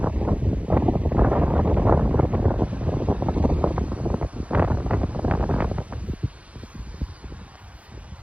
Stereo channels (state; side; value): late; left; 0.065 ms